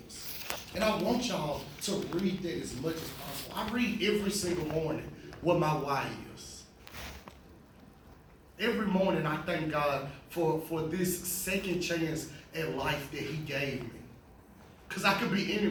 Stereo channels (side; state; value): both; identical; correlation 1.00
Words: is. And I want y'all to read that as much as possible. I read every single morning what my why is. Every morning I thank God for this second chance at life that he gave me. Because I could be